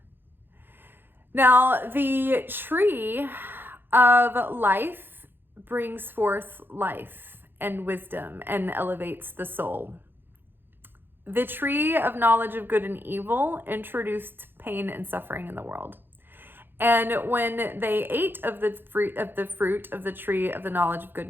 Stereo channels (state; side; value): late; left; 0.10 ms